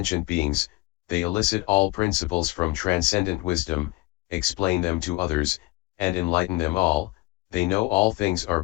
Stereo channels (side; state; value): right; quieter; 21.5 dB